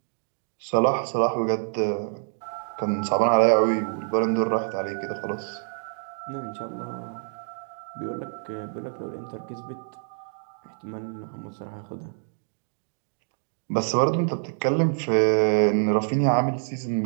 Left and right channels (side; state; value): left; silent; digital silence